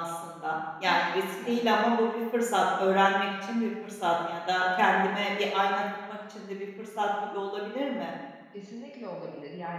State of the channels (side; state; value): both; identical; correlation 1.00